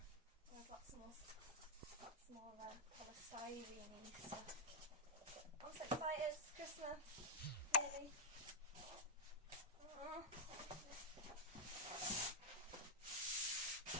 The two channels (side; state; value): both; normal; correlation -0.03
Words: Oh, I've got some more polystyrene stuff. I'm so excited, it's Christmas. Really. Oh.